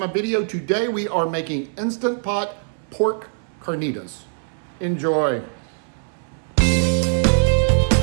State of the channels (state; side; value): silent; left; 64 dB below the other